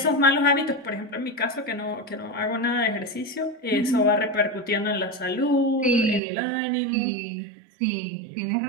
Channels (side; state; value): left; drops out; at 6.2 s